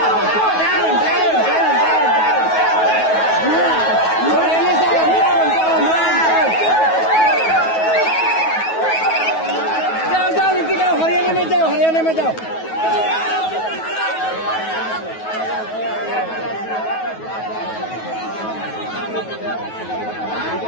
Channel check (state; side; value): late; right; 9.3 ms